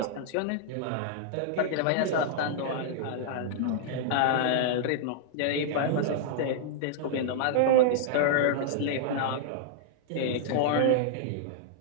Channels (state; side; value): different; both; correlation -0.01